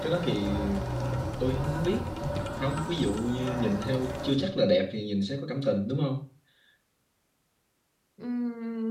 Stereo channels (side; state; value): both; identical; correlation 1.00